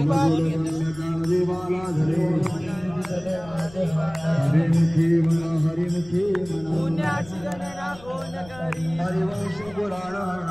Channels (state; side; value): noise; left; rumble, 20 dB below the sound